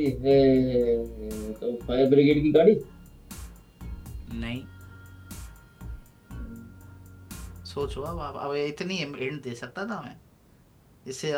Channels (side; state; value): both; identical; correlation 1.00